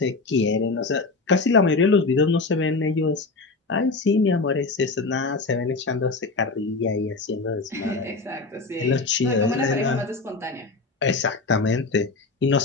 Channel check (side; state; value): right; quieter; 3.8 dB